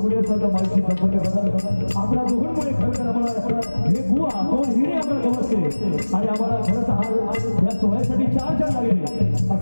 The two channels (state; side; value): inverted; both; correlation -1.00